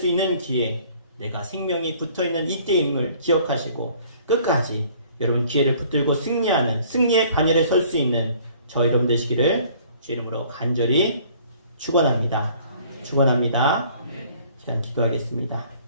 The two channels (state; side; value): inverted; both; correlation -0.55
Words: 있는 기회, 내가 생명이 붙어있는 이때임을 기억하시고 끝까지 여러분 기회를 붙들고 승리하는 승리의 반열에 설 수 있는 저 여러분 되시기를 주 이름으로 간절히 축원합니다. 축원합니다. 시간 기도하겠습니다.